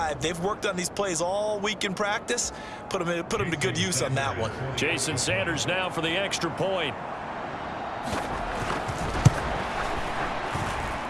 they've worked on these plays all week in practice. Put them to good use on that one. Jason Sanders now for the extra point.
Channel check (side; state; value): both; identical; correlation 1.00